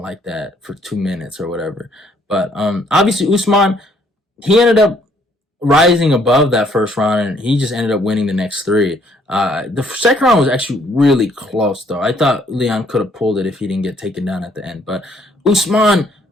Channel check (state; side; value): normal; both; correlation 0.65